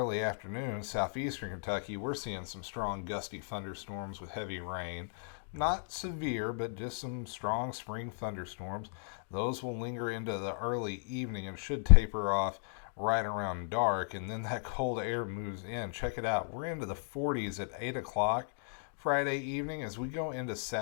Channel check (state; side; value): silent; right; digital silence